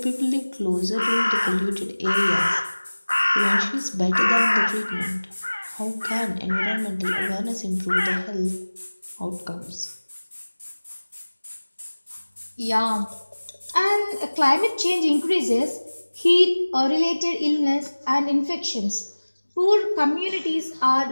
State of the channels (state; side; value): inverted; both; correlation -1.00